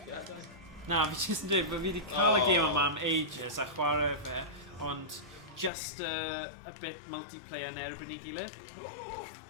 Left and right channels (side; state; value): right; drops out; at 5.7 s